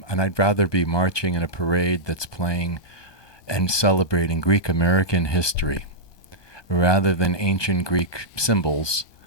I'd rather be marching in a parade that's playing and celebrating Greek American history rather than ancient Greek symbols.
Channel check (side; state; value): right; late; 1.2 ms